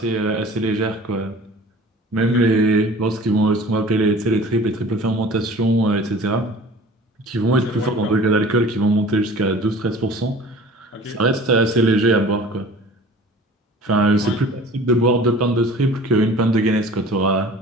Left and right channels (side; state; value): both; normal; correlation 0.44